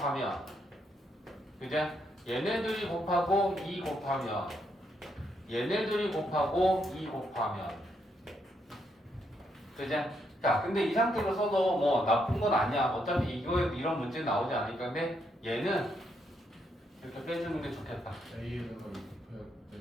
그죠? 얘네들이 곱하고 2 곱하면, 얘네들이 곱하고 2 곱하면, 그죠? 자, 근데 이 상태로 써도 뭐 나쁜 건 아니야. 어차피 이거에 이런 문제 나오지 않으니까. 근데 얘는 이렇게 빼주는 게 좋겠다. A에다가 곱해야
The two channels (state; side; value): normal; both; correlation 0.77